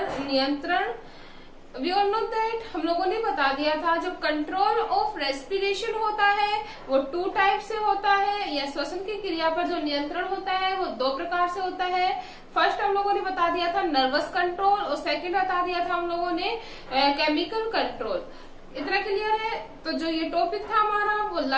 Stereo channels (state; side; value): identical; both; correlation 1.00